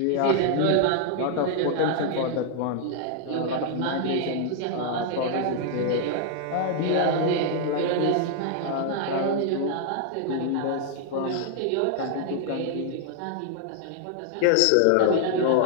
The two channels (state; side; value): different; both; correlation 0.00